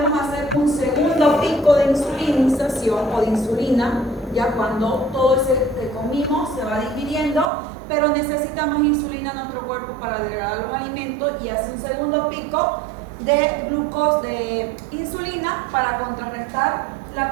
hacer un segundo pico de insulinización o de insulina, ya cuando todo ese que comimos se va digiriendo, pero necesita más insulina en nuestro cuerpo para degradar los alimentos y hace un segundo pico de glucosa, de insulina para contrarrestar la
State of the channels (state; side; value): drops out; left; at 7.5 s